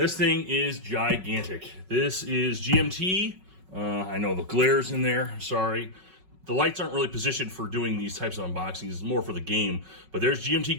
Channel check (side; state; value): left; late; 5.4 ms